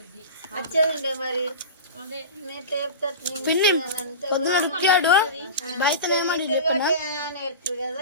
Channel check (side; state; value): both; inverted; correlation -0.30